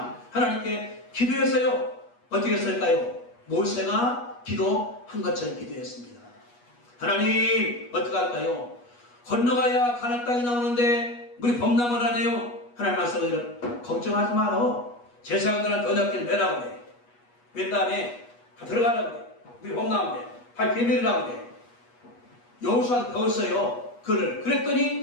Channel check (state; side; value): late; right; 8.3 ms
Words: 하나님께 기도했어요. 어떻게 했을까요? 모세가 기도한 것처럼 기도했습니다. 하나님 어떻게 할까요? 건너가야 가나안 땅이 나오는데 물이 범람을 하네요. 하나님 말씀을 걱정하지 마라. 제사장들한테 언약궤를 매라고 그래. 맨 다음에 들어가라고 그래. 물이 범람한데 발 비밀이라고 그래. 여호수아도 배웠어요.